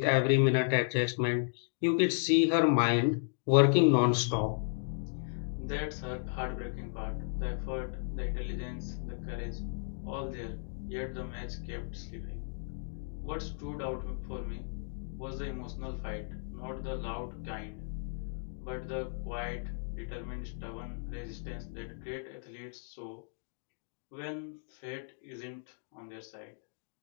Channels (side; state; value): right; silent; digital silence